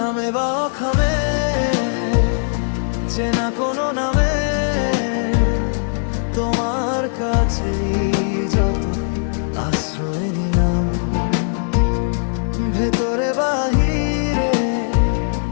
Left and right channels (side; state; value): right; silent; digital silence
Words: বা অখামে চেনা কোনো নামে তোমার কাছে যত আশ্রয় নিলাম, ভেতরে বাহিরে